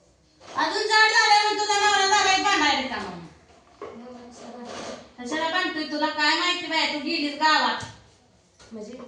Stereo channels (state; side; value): identical; both; correlation 1.00